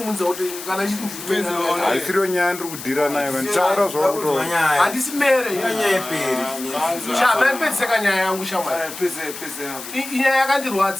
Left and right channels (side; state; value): left; noise; hiss, 11 dB below the sound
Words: kuti kana uchiti ndiri mero haisiriyo nyaya ndiri kudhira nayo kanitaura zvakuto handisi mere chamaipedziseka nyaya yangu shamwari inyaya